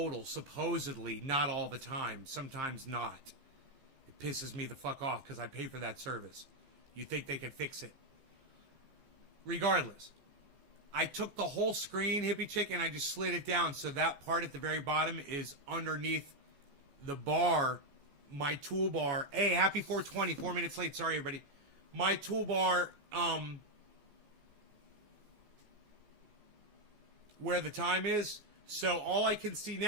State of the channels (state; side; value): late; left; 14 ms